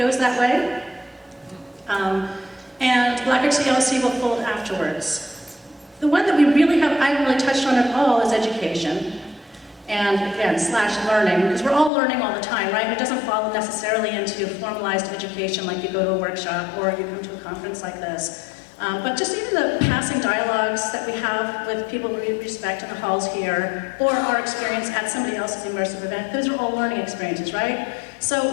that way. And Black Rock GLC will fold afterwards. The one that we really I haven't really touched on at all is education. And again, / learning, because we're all learning all the time, right? It doesn't fall necessarily into formalized education like you go to a workshop or you come to a conference like this. But just even the passing dialogues that we have with people we respect in the halls here, or our experience at somebody else's immersive event, those are all learning experiences, right? So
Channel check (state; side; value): drops out; right; at 11.9 s